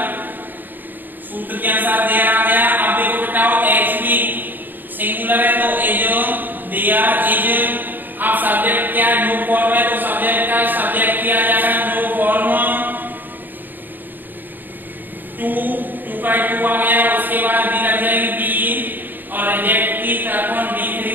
सूत्र के अनुसार देयर आ गया। अब देखो बेटाओ HV सिंगुलर है तो इज देयर इज अब सब्जेक्ट क्या है, नो फॉर्म है, तो सब्जेक्ट का सब्जेक्ट किया जाएगा नो फॉर्म टू, टू का टू आ गया, उसके बाद बी लग जाएगी बी, और रिजेक्ट की तरफ D3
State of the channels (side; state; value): left; late; 0.090 ms